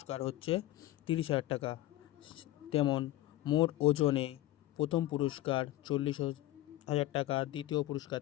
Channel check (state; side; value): quieter; right; 15.6 dB